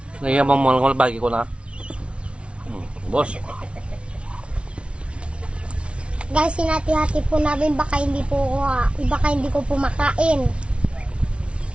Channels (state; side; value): late; left; 0.059 ms